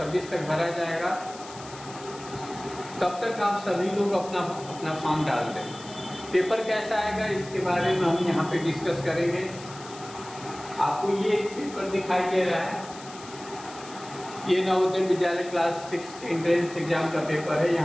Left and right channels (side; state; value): left; noise; hiss, 17 dB below the sound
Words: तक भरा जाएगा। तब तक आप सभी लोग अपना फॉर्म डाल दें। पेपर कैसा आएगा इसके बारे में हम यहाँ पे डिस्कस करेंगे। आपको ये पेपर दिखाई दे रहा है, ये नवोदय विद्यालय क्लास 6 के एंट्रेंस एग्जाम का पेपर है।